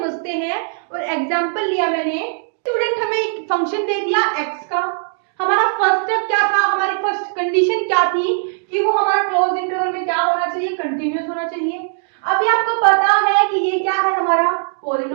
हैं, और एग्जाम्पल लिया मैंने, स्टूडेंट हमें एक फंक्शन दे दिया x का। हमारा फर्स्ट स्टेप क्या था, हमारी फर्स्ट कंडीशन क्या थी कि वो हमारा क्लोज इंटरवल में क्या होना चाहिए, कंटिन्यूअस होना चाहिए। अभी आपको पता है कि ये क्या है, हमारा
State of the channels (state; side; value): silent; left; digital silence